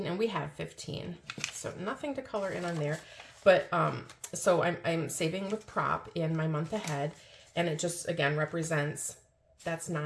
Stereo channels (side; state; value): both; identical; correlation 1.00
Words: and we have 15. So nothing to color in on there. But so I'm saving with prop in my month ahead, and it just, again, represents, that's